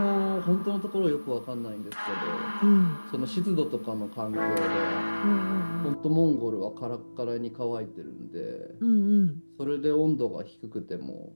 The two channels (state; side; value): inverted; both; correlation -1.00